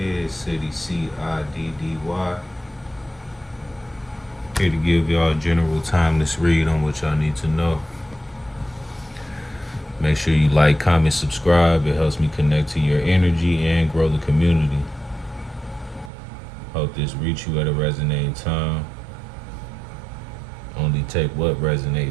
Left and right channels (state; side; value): drops out; left; at 16.1 s